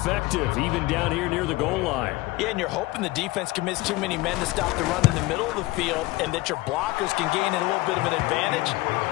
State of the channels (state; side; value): quieter; right; 20.1 dB